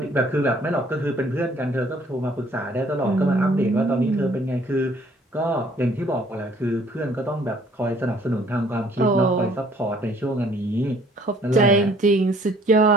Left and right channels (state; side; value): normal; both; correlation 0.58